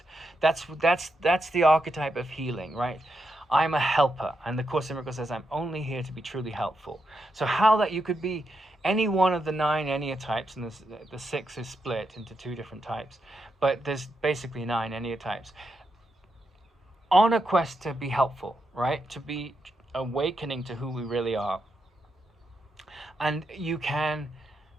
that's the archetype of healing, right? I'm a helper, and the Course in Miracles says I'm only here to be truly helpful. So how that you could be any one of the 9 Enneatypes, and the 6 is split into 2 different types, but there's basically 9 Enneatypes, on a quest to be helpful, right? To be awakening to who we really are. And you can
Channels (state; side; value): normal; both; correlation 0.84